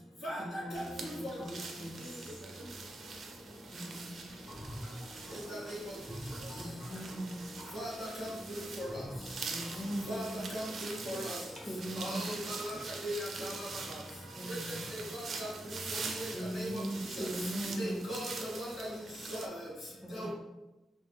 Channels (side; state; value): both; normal; correlation 0.84